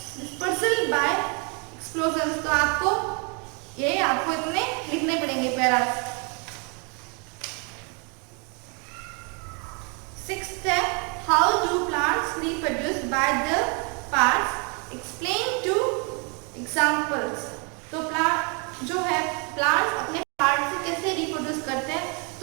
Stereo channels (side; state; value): left; quieter; 34.4 dB